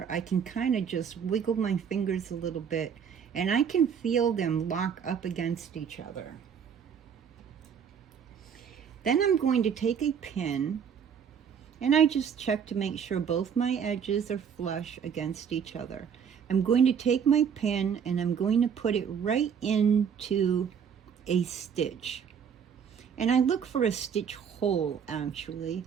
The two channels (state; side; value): quieter; left; 7.4 dB